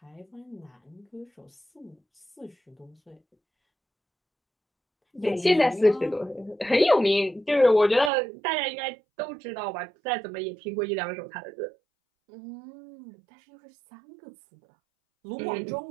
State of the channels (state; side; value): drops out; left; at 8.1 s